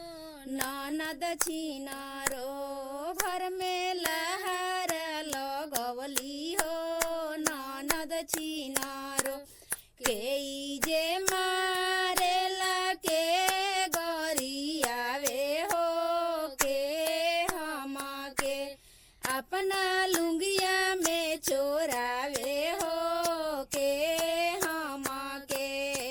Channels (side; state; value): both; identical; correlation 1.00